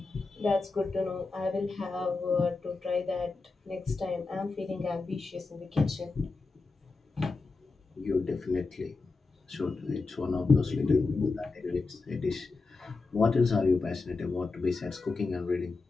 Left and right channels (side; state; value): right; quieter; 3.9 dB